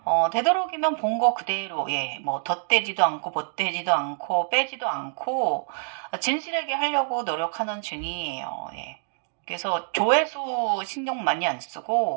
되도록이면 본 거 그대로, 예, 뭐 덧대지도 않고 못되지도 않고 빼지도 않고 진실하게 하려고 노력하는 중이에요. 예. 그래서 조회수 신경 많이 안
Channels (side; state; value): left; silent; digital silence